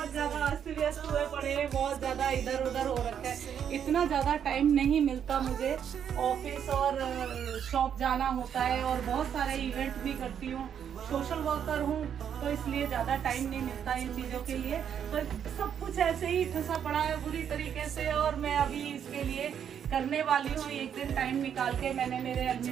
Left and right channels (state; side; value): quieter; left; 8.5 dB